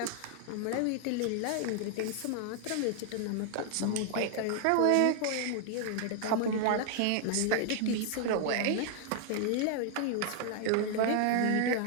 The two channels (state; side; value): different; both; correlation 0.00